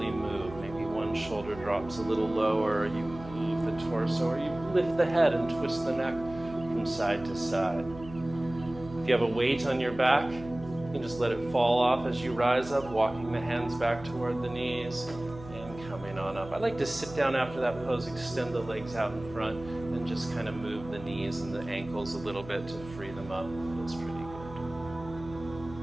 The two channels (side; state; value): right; noise; hum, 15 dB below the sound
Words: move. Maybe one shoulder drops a little lower, or you move the torso, or you lift the head and twist the neck from side to side. If you have a weight on your back, you can just let it fall off as you rise up, walking the hands back toward the knees and coming on up. I like to sit down after that pose, extend the legs out in front, and just kind of move the knees and the ankles a little bit to free them up. It feels pretty good.